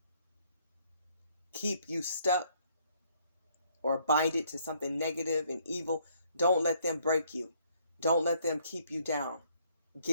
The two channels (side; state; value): both; inverted; correlation -0.66